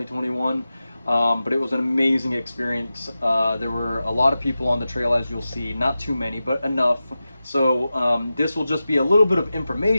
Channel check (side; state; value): both; inverted; correlation -0.93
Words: But it was an amazing experience. There were a lot of people on the trail, as you'll see, not too many, but enough. So this will just be a little bit of